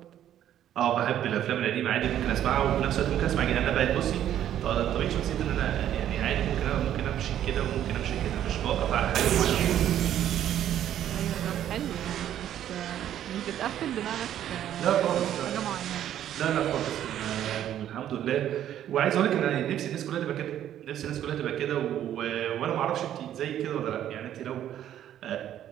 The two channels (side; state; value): left; quieter; 11.1 dB